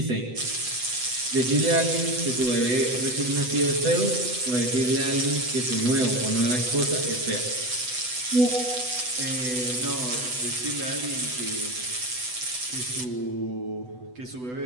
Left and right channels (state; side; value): late; left; 8.0 ms